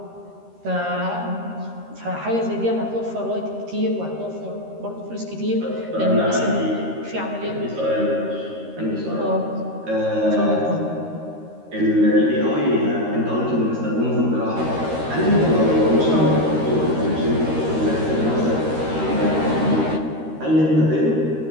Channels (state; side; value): late; left; 13 ms